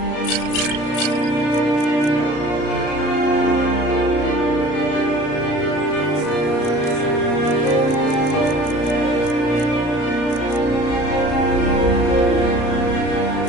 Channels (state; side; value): late; right; 34 ms